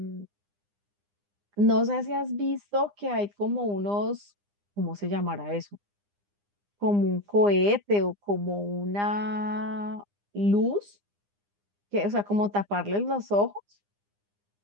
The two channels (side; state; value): left; late; 9.8 ms